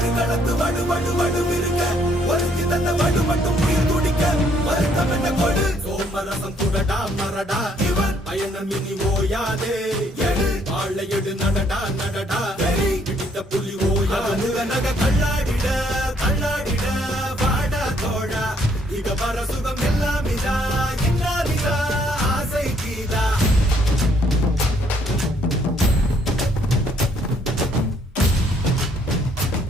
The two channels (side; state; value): both; normal; correlation 0.67